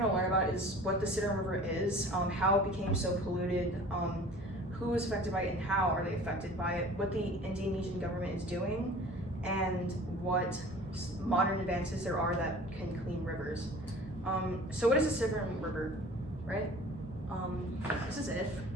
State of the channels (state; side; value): normal; both; correlation 0.44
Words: to learn about is what the Citarum River is, how it became so polluted, who is affected by it and how are they affected by it, what the Indonesian government is doing, and what modern advances there are that can clean rivers. So what is the Citarum River, right? This is it.